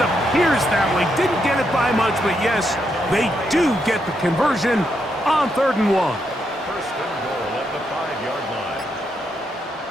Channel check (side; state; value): both; normal; correlation 0.80